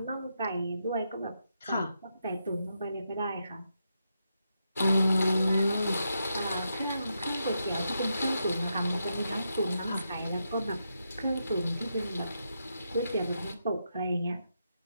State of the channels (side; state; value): both; inverted; correlation -0.84